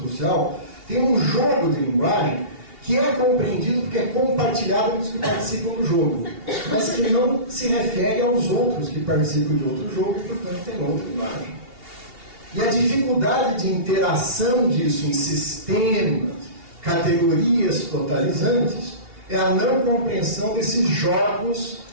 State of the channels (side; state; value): left; late; 2.8 ms